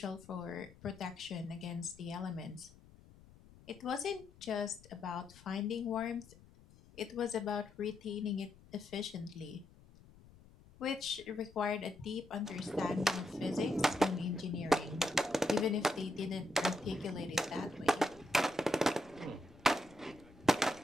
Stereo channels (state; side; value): noise; left; rumble, 23 dB below the sound